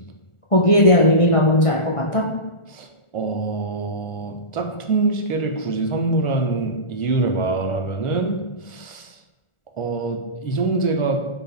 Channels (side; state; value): right; late; 1.4 ms